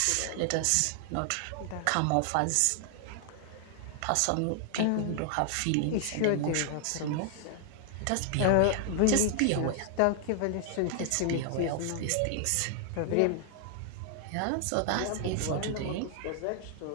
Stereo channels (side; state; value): both; different; correlation 0.00